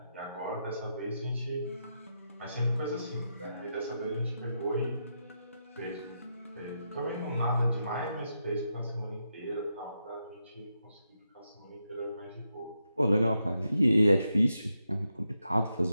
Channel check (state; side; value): inverted; both; correlation -0.84